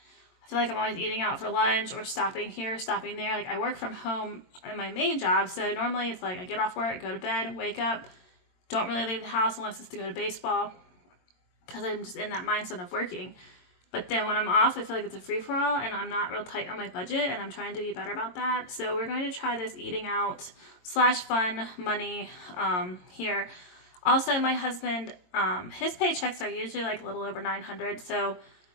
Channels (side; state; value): right; late; 22 ms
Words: I feel like I'm always eating out for lunch or stopping here, stopping there. Like I work from home in my main job, so normally it's like I get off work, go to bed, wake up, don't really leave the house unless it's to go to baseball because I'm just in that mindset of working. But then when I'm off, I feel like it's a free-for-all and I'm not real tight on my budget and I'm trying to be better about that. So we're going to try this eating out / fun money here. Also, my husband, his paychecks are usually like a little over $900, so